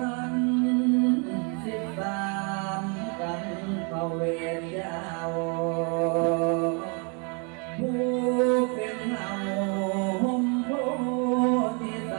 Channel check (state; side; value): quieter; left; 36.0 dB